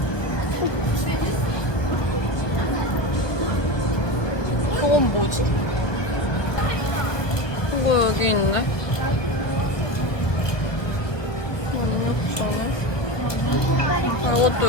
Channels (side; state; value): right; late; 1.1 ms